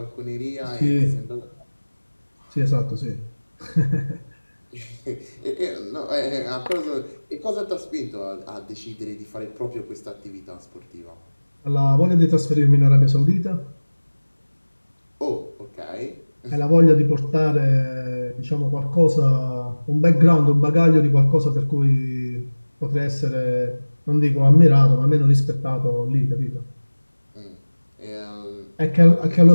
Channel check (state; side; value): inverted; both; correlation -1.00